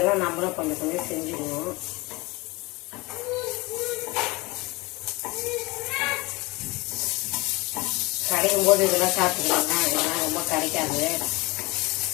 நம்மளும் கொஞ்சம் கொஞ்சம் செஞ்சுக்கணும். கிடைக்கும் போது இதெல்லாம் சாப்பிட்டுக்கலாங்க. இதெல்லாம் ரொம்ப கிடைக்காது.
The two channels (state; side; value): quieter; right; 23.9 dB